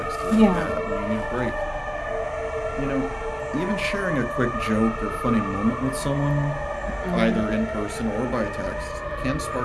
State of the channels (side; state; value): both; identical; correlation 1.00